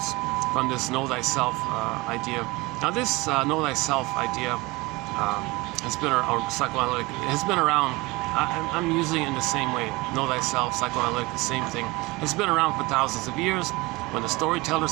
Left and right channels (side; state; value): left; quieter; 22.9 dB